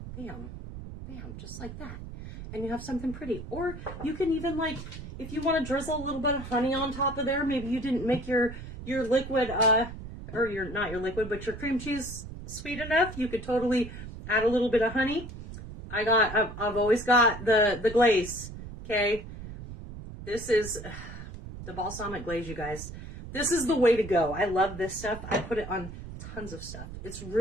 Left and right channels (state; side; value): noise; right; rumble, 11 dB below the sound